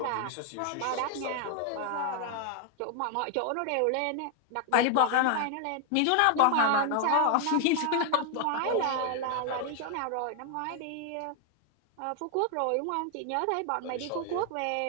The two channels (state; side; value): different; both; correlation 0.00